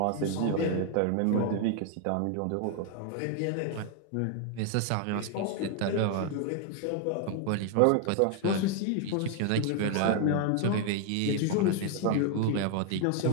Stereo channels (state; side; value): different; both; correlation 0.01